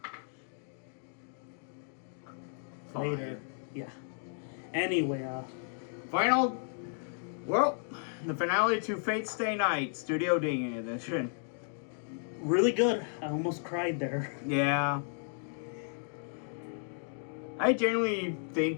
Fine. Later. Yeah. Anyway, Final. Well, the finale to Fate Stay Night, Studio Ding edition. really good. I almost cried there. Yeah. I genuinely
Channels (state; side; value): silent; right; digital silence